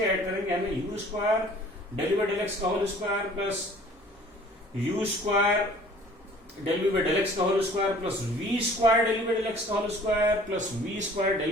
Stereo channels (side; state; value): both; normal; correlation 0.51